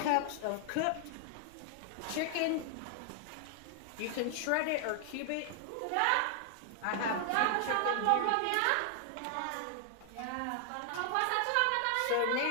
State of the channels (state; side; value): different; both; correlation 0.00